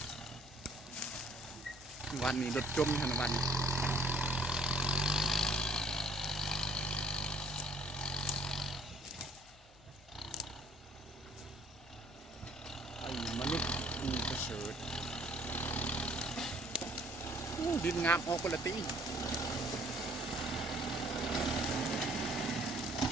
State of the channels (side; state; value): both; normal; correlation 0.59